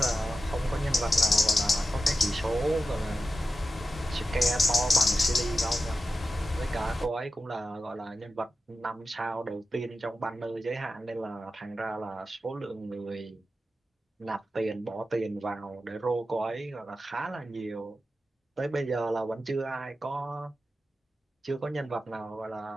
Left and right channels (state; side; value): normal; both; correlation 0.91